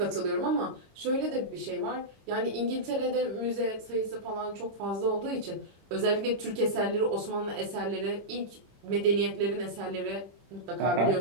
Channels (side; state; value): left; late; 26 ms